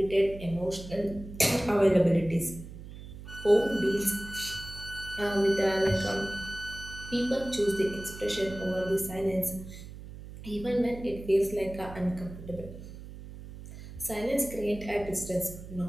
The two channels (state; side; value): noise; right; hum, 13 dB below the sound